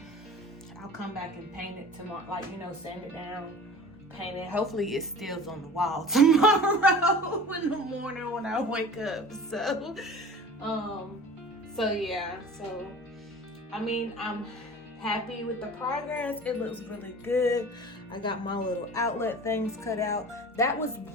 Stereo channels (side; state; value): both; normal; correlation 0.40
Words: come back and paint it tomorrow, like, you know, sand it down, paint it. Hopefully it stills on the wall tomorrow in the morning when I wake up. So yeah, so I mean, I'm happy with the progress. It looks really good. I got my little outlet things cut out. That was